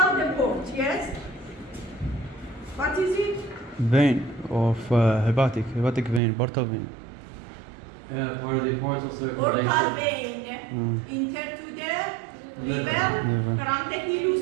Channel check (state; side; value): drops out; left; at 6.2 s